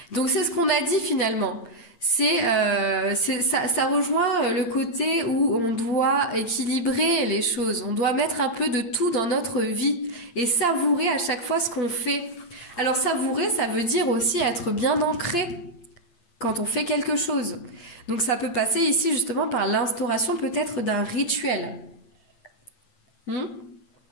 Donc c'est ce qu'on a dit finalement. Ça rejoint le côté où on doit équilibrer les choses. On doit mettre un peu de tout dans notre vie et savourer à chaque fois ce qu'on fait. Alors savourer, ça veut dire aussi être bien ancré quand on fait quelque chose. Donc ça peut passer ici justement par l'instauration peut-être d'un rituel.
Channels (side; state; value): right; late; 8.6 ms